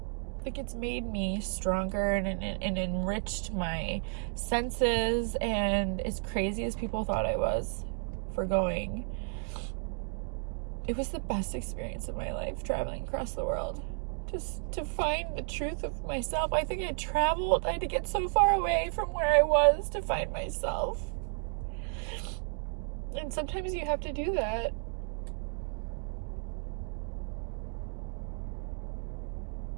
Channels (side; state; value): left; silent; 56 dB below the other